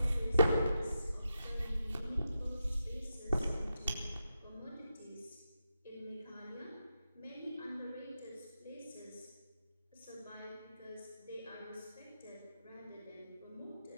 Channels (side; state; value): both; inverted; correlation -0.87